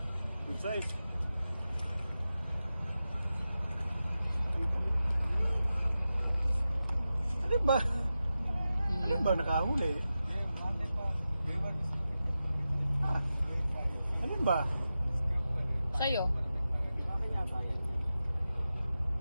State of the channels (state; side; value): inverted; both; correlation -0.92